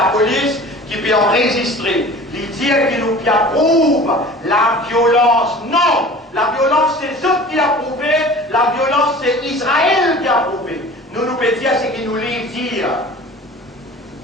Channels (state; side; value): normal; both; correlation 0.42